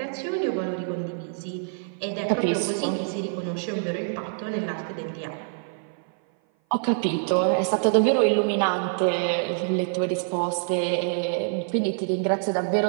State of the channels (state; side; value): silent; left; 57 dB below the other